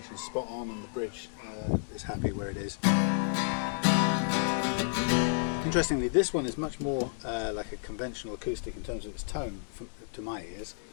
is spot on and the bridge is happy where it is. Interestingly, this one is much more like a conventional acoustic in terms of its tone to my ears.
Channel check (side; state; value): right; silent; digital silence